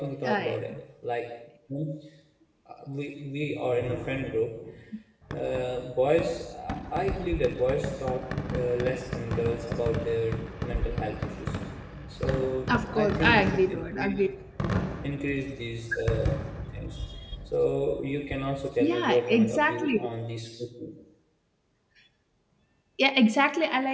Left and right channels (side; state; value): both; identical; correlation 1.00